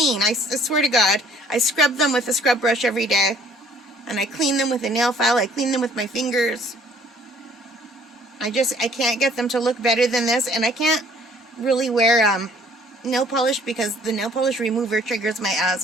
I swear to God. I scrub them with a scrub brush every day. And I clean them with a nail file. I clean them with my fingers. I can't get them to look better than this. And I can't really wear nail polish because the nail polish remover triggers my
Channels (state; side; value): normal; both; correlation 0.57